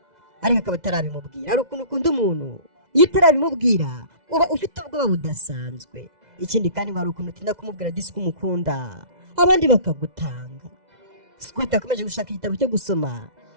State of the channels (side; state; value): left; late; 2.0 ms